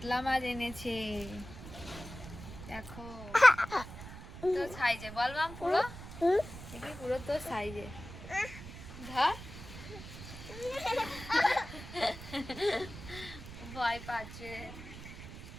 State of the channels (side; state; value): right; noise; rumble, 13 dB below the sound